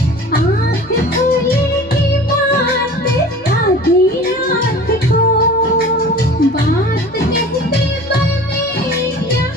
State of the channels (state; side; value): noise; left; hum, 26 dB below the sound